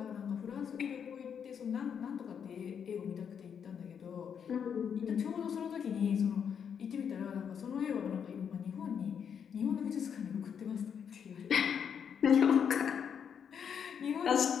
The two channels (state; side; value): quieter; right; 7.6 dB